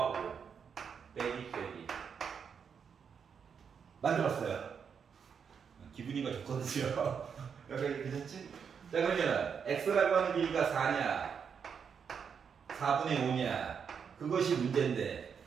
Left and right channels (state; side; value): quieter; left; 6.8 dB